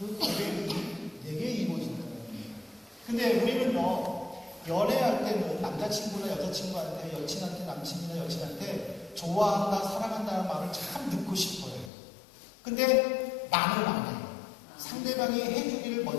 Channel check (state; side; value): drops out; right; at 11.9 s